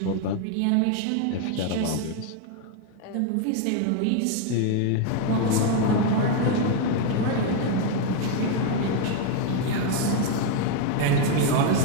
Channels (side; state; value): both; different; correlation 0.01